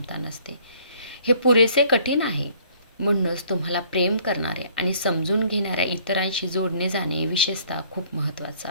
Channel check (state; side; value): inverted; both; correlation -0.59